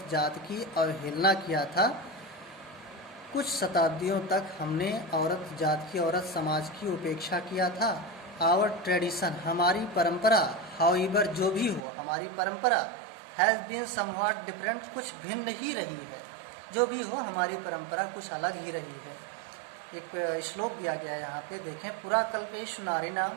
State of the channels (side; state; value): left; drops out; at 11.8 s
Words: जात की अवहेलना किया था। कुछ शताब्दियों तक हमने औरत जात की, औरत समाज की उपेक्षा किया था। आवर ट्रेडिशन, हमारी परंपरा, हाउएवर, जो भी हो, हमारी परंपरा, हैज़ बीन समव्हाट डिफरेंट, कुछ भिन्न ही रही है, जो भी हो हमारी परंपरा कुछ अलग ही रही है। एक श्लोक दिया गया है यहाँ पे, देखें। पुराकल्पेषु नारीणां,